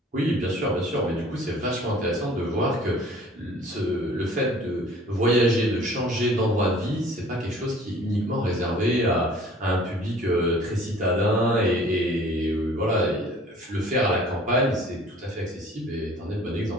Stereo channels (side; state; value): both; normal; correlation 0.50